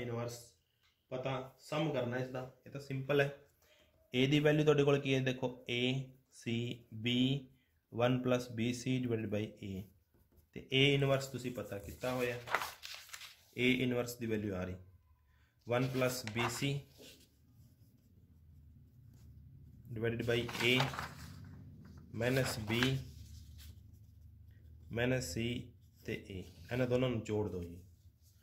पता सम करना इसका, ये तो सिंपल है। ए दी वैल्यू तुहाडे कोल की है देखो A C B 1 plus B C divided by A, ते ए इनवर्स तुसी पता कितना होया, ए इनवर्स दी वैल्यू आ रही 1 plus B C divided by A minus B minus C ते ए, इन्हां दोनों नूं जोड़ दो जी,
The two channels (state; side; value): identical; both; correlation 1.00